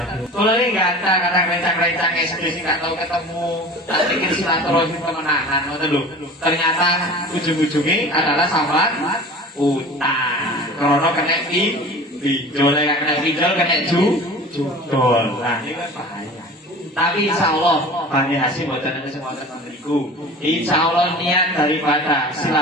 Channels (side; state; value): both; normal; correlation 0.39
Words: kalau ini nggak ada kadang rencang-rencang kayak sendiri nggak tahu ketemu, tak pikir silaturahim kemenangan, ternyata ujung-ujungnya adalah sambat utang, krono kena pinjol, kena pinjol, kena judol, nah ini kan bahaya. Tapi insya Allah Bani Hasyim buatan ada semua teman-temanku. Insya Allah niat daripada